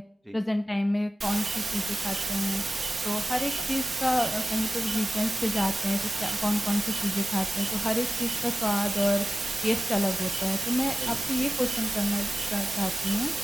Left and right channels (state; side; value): normal; both; correlation 0.96